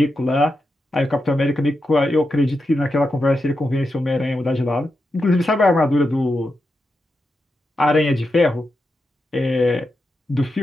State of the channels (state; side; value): normal; both; correlation 0.87